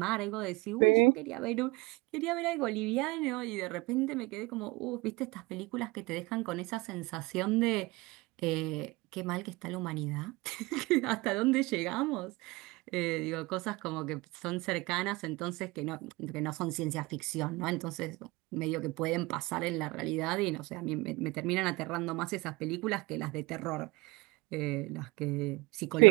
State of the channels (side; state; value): left; quieter; 23.7 dB